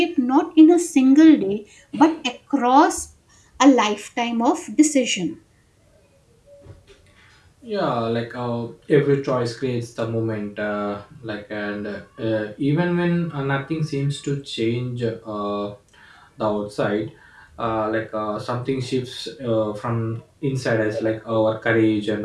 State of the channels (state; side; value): identical; both; correlation 1.00